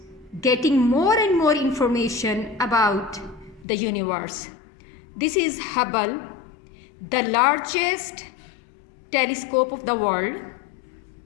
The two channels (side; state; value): right; drops out; at 3.7 s